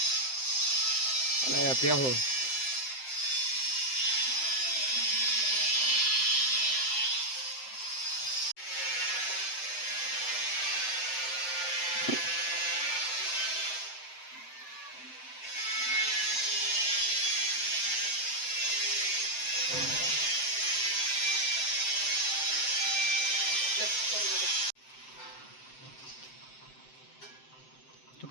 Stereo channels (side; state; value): right; late; 7.7 ms